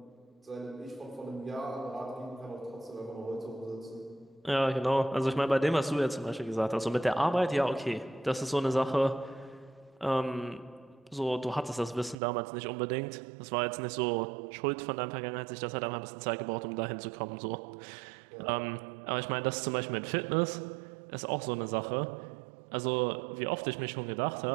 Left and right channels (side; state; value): left; drops out; at 12.2 s